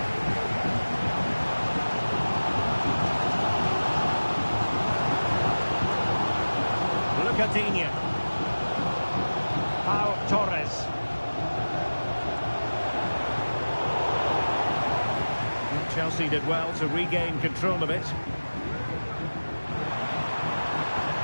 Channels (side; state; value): both; inverted; correlation -1.00